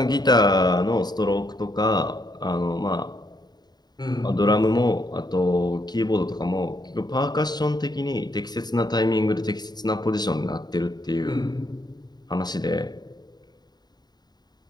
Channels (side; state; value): right; late; 0.20 ms